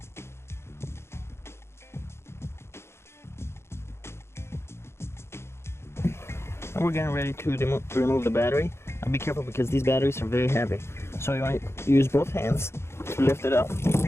And we're getting ready to remove the battery. Now be careful because these batteries are very heavy. So you want to use both hands to lift it up.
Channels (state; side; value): late; right; 0.12 ms